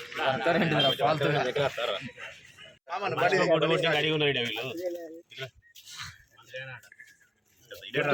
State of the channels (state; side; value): identical; both; correlation 1.00